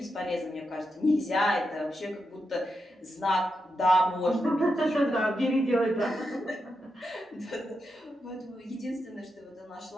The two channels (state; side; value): normal; both; correlation 0.86